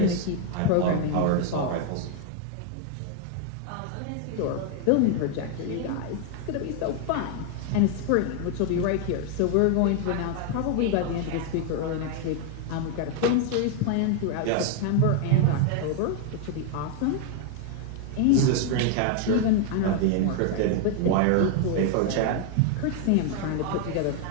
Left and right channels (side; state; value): both; different; correlation 0.00